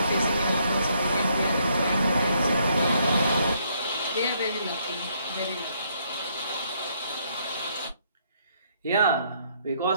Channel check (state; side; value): inverted; both; correlation -0.71